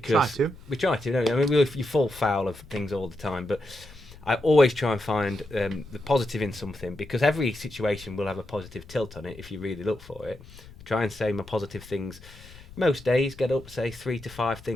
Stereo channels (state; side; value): noise; left; rumble, 19 dB below the sound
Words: we try to, don't we? I mean, you fall foul of things all the time, but I always try and find the positive in something, because every situation will have a positive tilt on it if you really look for it. I try and say my positive things most days, get up, say 3 to 5